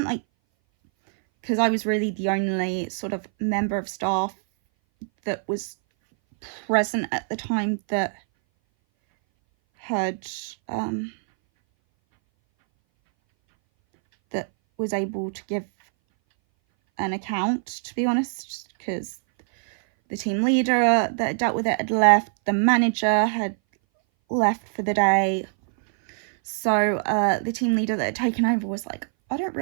really the only sort of member of staff that was present at the time that had, that was able to give an account, to be honest, because the team leader that dealt with it had left, the manager had left for the day. So the team leader that had taken over was like, I don't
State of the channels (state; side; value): silent; left; 59 dB below the other